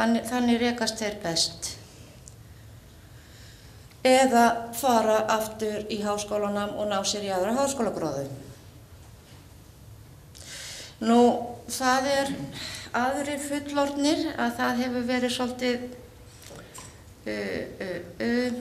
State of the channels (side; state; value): both; identical; correlation 1.00